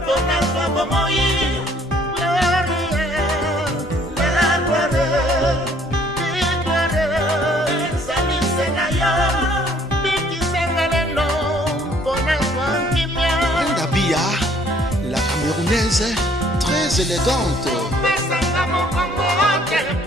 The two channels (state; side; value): normal; both; correlation 0.61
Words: La camerounaise très élégante.